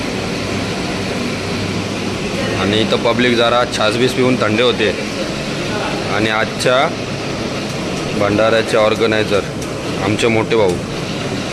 आणि इथं पब्लिक जरा छासबीस पिऊन थंडे होते। आणि आजच्या भंडाऱ्याचे ऑर्गनायझर आमचे मोठे भाऊ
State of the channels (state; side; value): identical; both; correlation 1.00